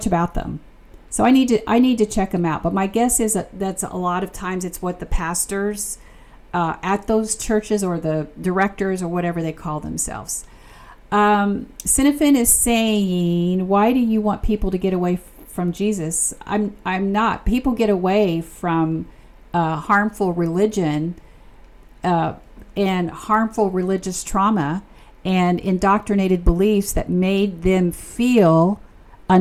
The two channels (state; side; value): identical; both; correlation 1.00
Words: about them, so I need to check them out. But my guess is that's a lot of times it's what the pastors at those churches or the directors or whatever they call themselves. Cinefin is saying, why do you want people to get away from Jesus? I'm not. People get away from harmful religion and harmful religious trauma and indoctrinated beliefs that made them feel